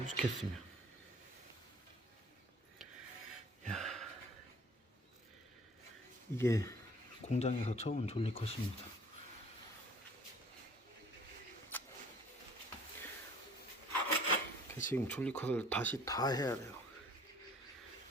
이게 공장에서 쳐온 졸리컷입니다. 지금 졸리컷을 다시 다 해야 돼요.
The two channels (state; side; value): normal; both; correlation 0.52